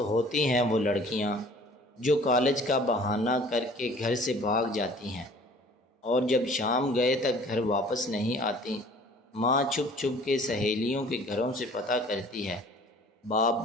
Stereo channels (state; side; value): normal; both; correlation 0.50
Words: ہیں وہ لڑکیاں جو کالج کا بہانہ کر کے گھر سے بھاگ جاتی ہیں اور جب شام گئے تک گھر واپس نہیں آتی۔ ماں چھپ چھپ کے سہیلیوں کے گھروں سے پتہ کرتی ہے۔ باپ